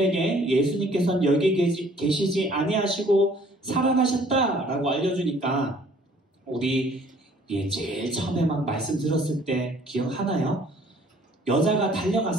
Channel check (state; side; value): normal; both; correlation 0.57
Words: 예수님께서는 여기 계시지 아니하시고 살아나셨다라고 알려주니까, 우리 제일 처음에 막 말씀 들었을 때 기억하나요? 여자가